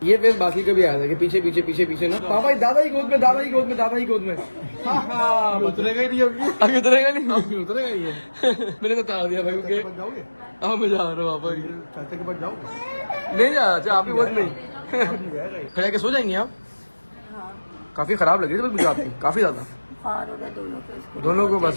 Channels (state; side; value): inverted; both; correlation -1.00